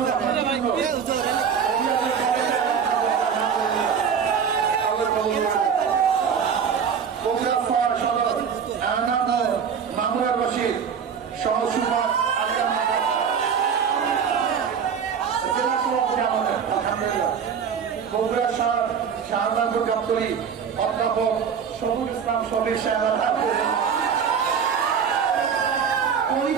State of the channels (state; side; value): quieter; left; 7.1 dB